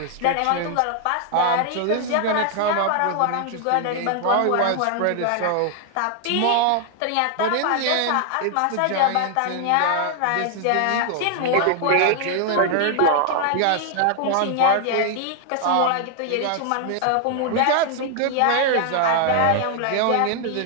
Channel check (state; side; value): different; both; correlation 0.00